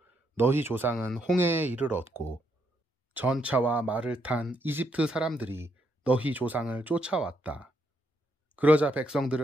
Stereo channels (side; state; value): both; normal; correlation 0.76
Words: 너희 조상은 홍해에 이르렀고 전차와 말을 탄 이집트 사람들이 너희 조상을 쫓아왔다. 그러자